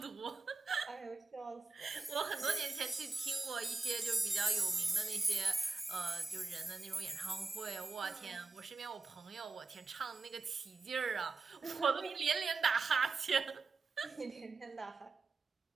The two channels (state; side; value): quieter; left; 3.8 dB